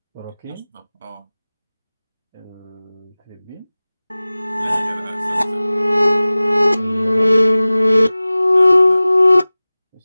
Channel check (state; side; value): inverted; both; correlation -0.98